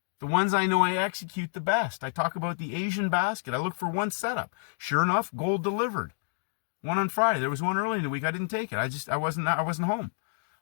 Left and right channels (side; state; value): right; silent; digital silence